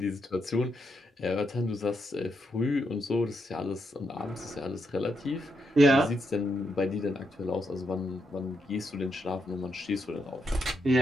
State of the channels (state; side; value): normal; both; correlation 0.81